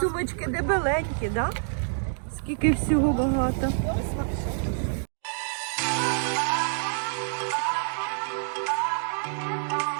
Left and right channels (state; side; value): silent; left; digital silence